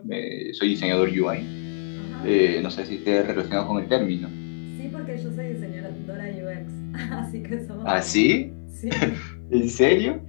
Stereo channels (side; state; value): right; silent; 58 dB below the other